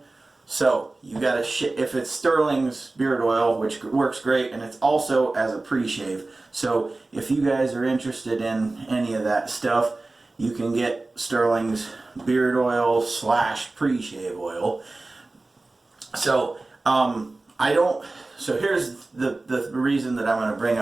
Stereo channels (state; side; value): quieter; left; 3.2 dB